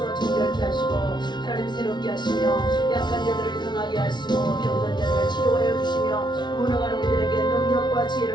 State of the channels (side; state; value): right; late; 0.21 ms